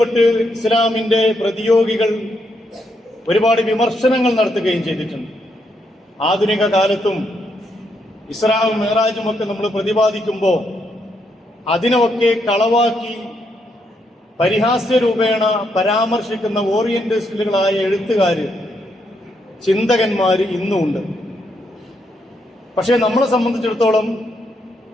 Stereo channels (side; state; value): both; normal; correlation 0.77